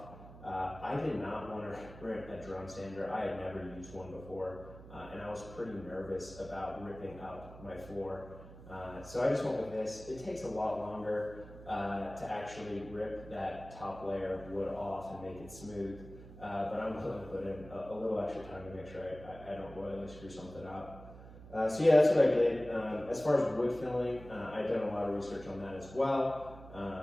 I did not want to rent a drum sander. I had never used one before, and I was pretty nervous about ripping up my floor. So I just went with this. It takes a lot longer to actually rip that top layer of wood off and make it smooth, but I'm willing to put in a little extra time to make sure I don't royally screw something up. So yeah, that's what I did. As far as wood filling, I've done a lot of research on that as well.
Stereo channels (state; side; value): noise; right; hum, 16 dB below the sound